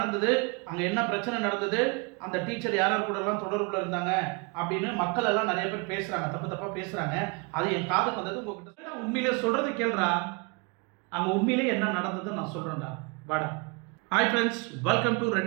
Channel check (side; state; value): left; quieter; 30.2 dB